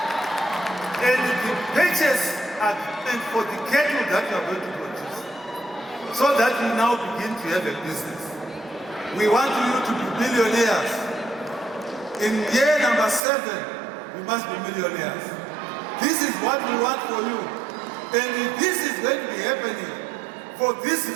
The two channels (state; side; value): drops out; left; at 13.2 s